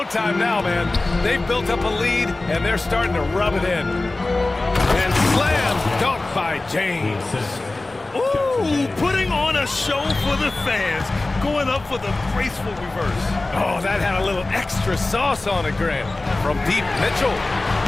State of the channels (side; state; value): right; quieter; 3.0 dB